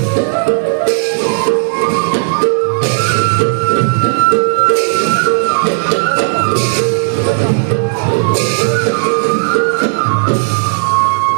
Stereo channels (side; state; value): left; silent; 64 dB below the other